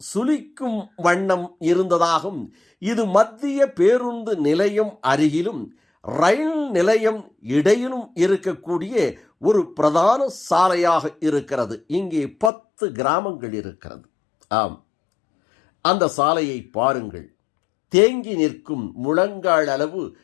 சுளிக்கும் வண்ணம் இருந்ததாகும். இது மத்திய பேருந்து நிலையம் அருகிலும் ரயில் நிலையம் இடையிலும் இருக்கக்கூடிய ஒரு பிரதான சாலையாக இருக்கிறது. இங்கே 10 கிராமங்கள் இருக்கிறது. ஆம், அந்த சாலையை பாருங்கள். தேங்கி நிற்கும் முழங்கால் அளவு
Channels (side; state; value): right; drops out; at 12.5 s